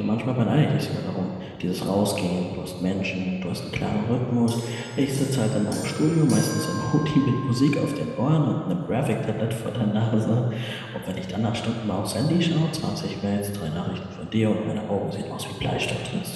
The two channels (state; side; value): identical; both; correlation 1.00